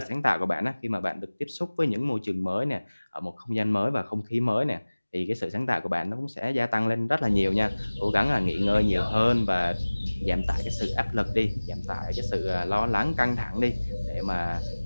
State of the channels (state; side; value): inverted; both; correlation -1.00